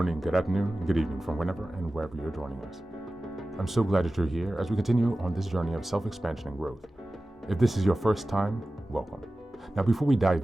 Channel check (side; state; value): both; normal; correlation 0.96